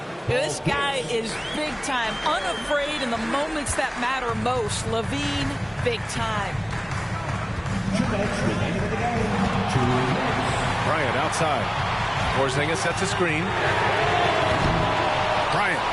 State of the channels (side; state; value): both; identical; correlation 1.00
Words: This guy is big time, unafraid in the moments that matter most. Levine, big time. Bryant outside. Porzingis sets a screen. Bryant,